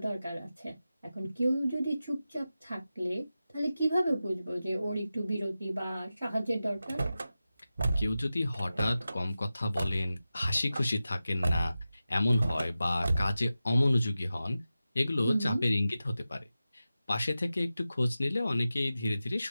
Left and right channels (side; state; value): both; inverted; correlation -0.93